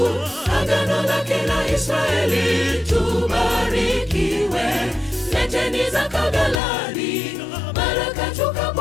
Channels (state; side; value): drops out; right; at 6.6 s